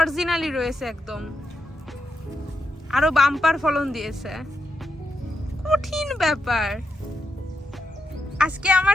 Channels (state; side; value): normal; both; correlation 0.84